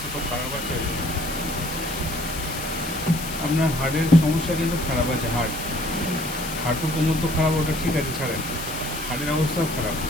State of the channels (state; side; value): noise; left; hiss, 9 dB below the sound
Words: তো খারাপ আছে। আপনার হার্টের সমস্যা কিন্তু খারাপ আছে। হাঁটু কোমর তো খারাপ, ওটা ঠিক আছে, ছাড়েন। হার্টের অবস্থাও খারাপ।